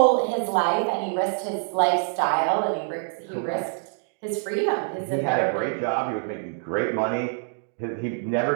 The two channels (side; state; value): left; silent; 61 dB below the other